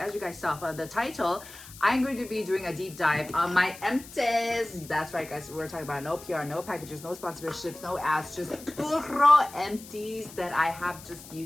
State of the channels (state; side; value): noise; left; hiss, 17 dB below the sound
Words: you guys saw from the title, I'm going to be doing a deep dive on my empties. That's right guys, we're talking about no PR, no packages, no sponsorships, no ads, just puro empties that I have just